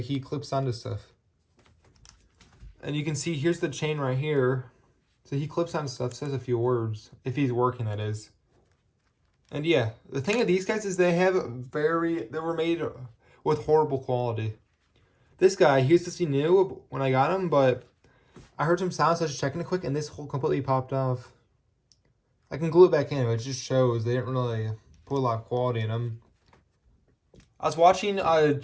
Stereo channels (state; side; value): identical; both; correlation 1.00